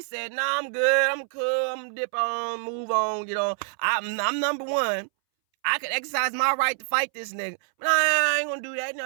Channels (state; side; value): silent; left; 61 dB below the other